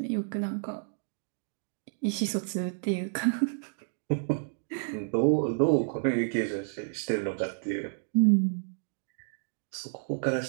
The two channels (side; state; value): left; silent; digital silence